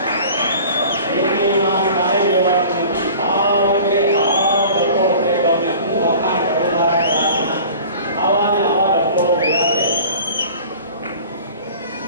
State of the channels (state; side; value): inverted; both; correlation -0.44